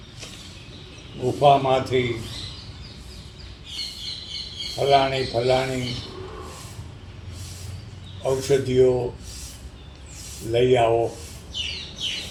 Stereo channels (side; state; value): both; identical; correlation 1.00